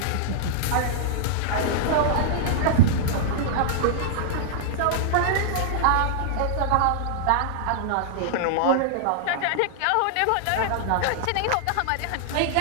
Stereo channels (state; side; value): different; both; correlation -0.01